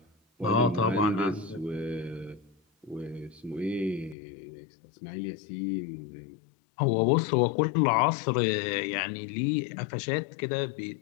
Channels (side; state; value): right; drops out; at 4.2 s